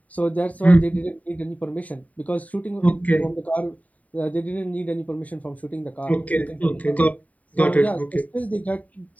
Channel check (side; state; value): right; late; 0.070 ms